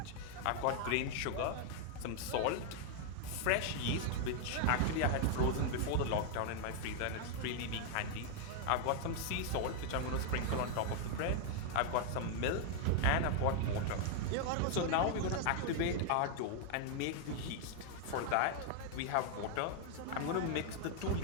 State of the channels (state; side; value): different; both; correlation 0.00